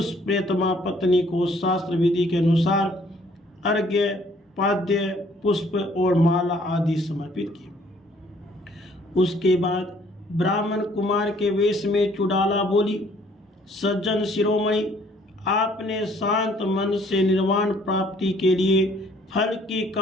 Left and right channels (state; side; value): normal; both; correlation 0.61